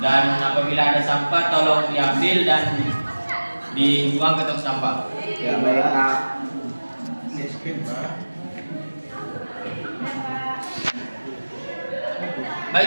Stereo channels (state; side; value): inverted; both; correlation -1.00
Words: apabila ada sampah tolong diambil dan dibuang ke tong sampah. ya baik Pak. Miskin Pak.